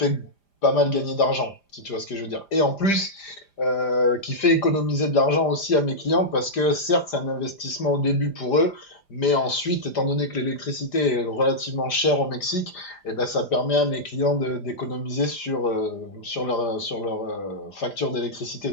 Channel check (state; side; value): late; right; 5.0 ms